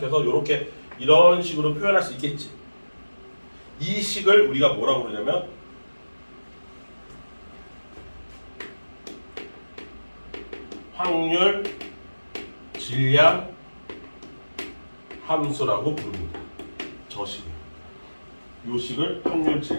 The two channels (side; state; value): both; inverted; correlation -1.00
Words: 이렇게 이런 식으로 표현할 수 있겠지. 이 식을 우리가 뭐라고 그러냐면 확률 질량 함수라고 부릅니다. 저 식을. 이 식을 확률